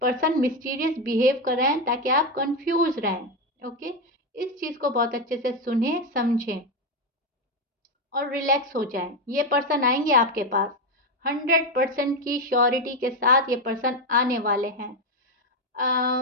पर्सन मिस्टीरियस बिहेव कर रहे हैं ताकि आप कंफ्यूज रहें। ओके, इस चीज़ को बहुत अच्छे से सुने समझें और रिलैक्स हो जाएं। ये पर्सन आएंगे आपके पास 100% की श्योरिटी के साथ, ये पर्सन आने वाले हैं।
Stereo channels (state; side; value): normal; both; correlation 0.10